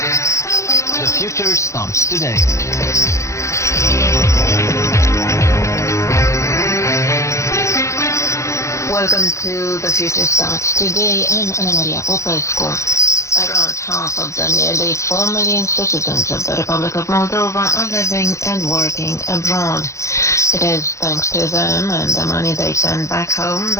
The future starts today. Welcome to The Future Starts Today. I'm Ana Maria Popescu. Around half of the nearly 4 million citizens of the Republic of Moldova are living and working abroad. It is thanks to them and the money they send back home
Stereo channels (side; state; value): right; late; 0.14 ms